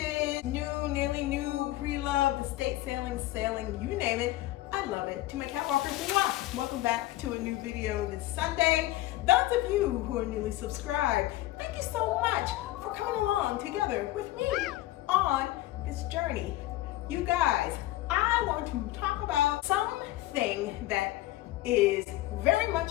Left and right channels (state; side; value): quieter; right; 16.5 dB